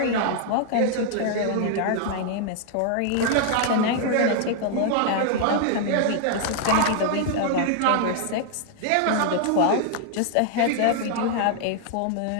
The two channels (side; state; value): both; different; correlation 0.00